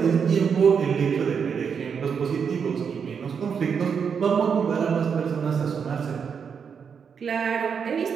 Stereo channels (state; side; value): quieter; left; 6.6 dB